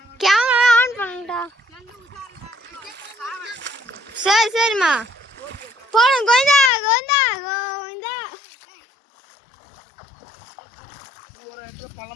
கேமரா ஆன் பண்ணுடா. சரி சரிம்மா போடும். கோவிந்தா கோவிந்தா கோவிந்தா.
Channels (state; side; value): drops out; right; at 6.7 s